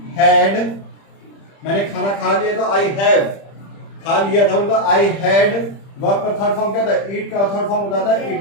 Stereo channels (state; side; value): late; right; 30 ms